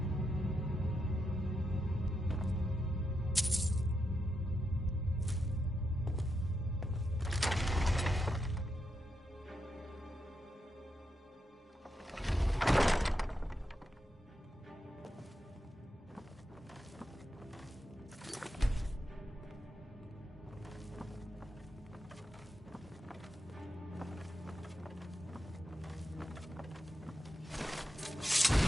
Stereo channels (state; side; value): normal; both; correlation 0.85